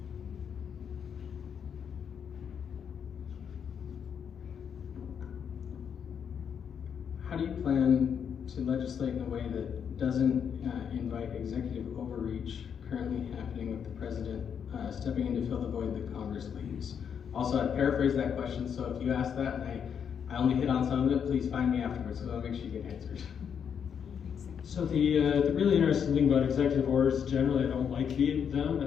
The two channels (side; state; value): right; quieter; 7.6 dB